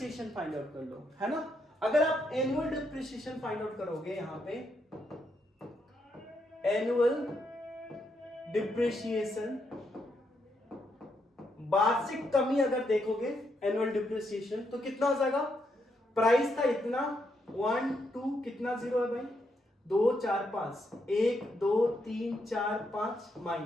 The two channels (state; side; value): normal; both; correlation 0.79